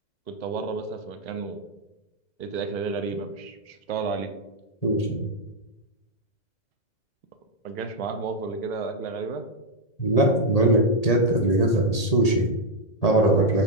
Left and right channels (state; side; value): late; right; 1.8 ms